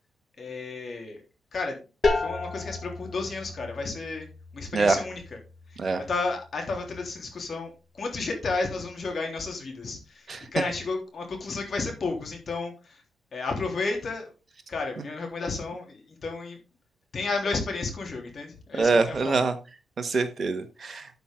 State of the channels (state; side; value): normal; both; correlation 0.84